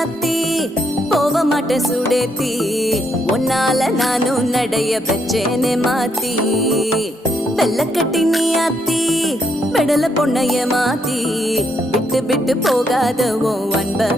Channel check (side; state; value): both; normal; correlation 0.75